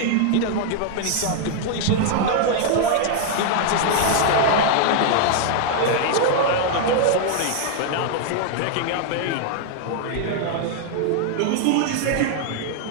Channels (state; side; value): different; both; correlation 0.00